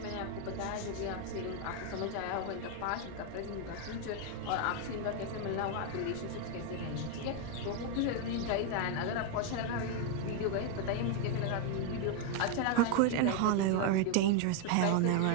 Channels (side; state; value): both; different; correlation 0.01